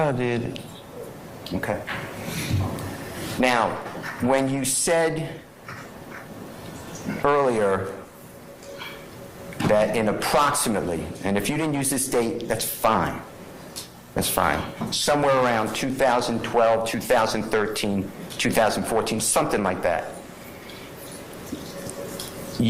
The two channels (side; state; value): both; identical; correlation 1.00